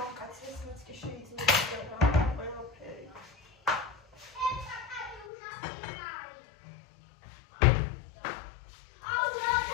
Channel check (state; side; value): drops out; right; at 5.3 s